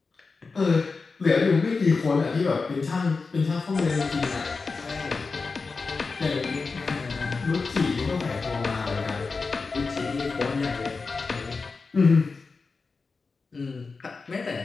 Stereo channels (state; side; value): quieter; right; 4.3 dB